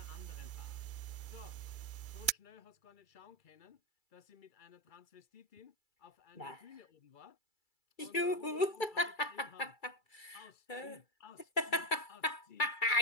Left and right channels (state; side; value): late; right; 2.3 ms